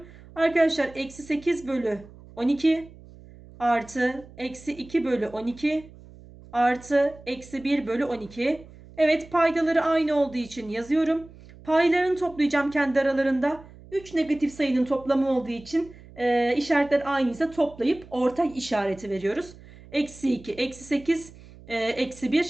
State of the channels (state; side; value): noise; right; hum, 21 dB below the sound